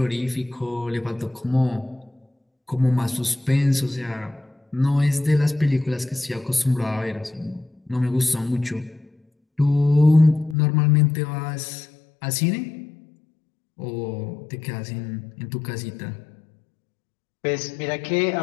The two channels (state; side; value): drops out; right; at 10.6 s